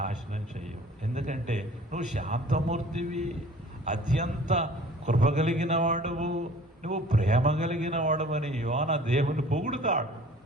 చెయ్యవు. ఎందుకంటే నువ్వు శాంతమూర్తివి, అత్యంత కృప కలిగిన వాడువు, నువ్వు ప్రేమ కలిగిన వాడవని యోన దేవుని పొగుడుతాడు.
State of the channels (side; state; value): both; normal; correlation 0.49